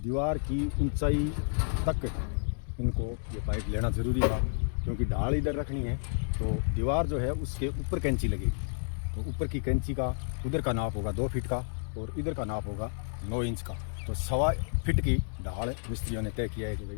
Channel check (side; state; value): right; silent; digital silence